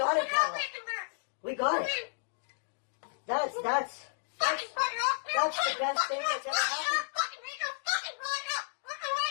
it, Pavel. We got it. That's the best thing that's ever happened.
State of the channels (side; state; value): right; silent; digital silence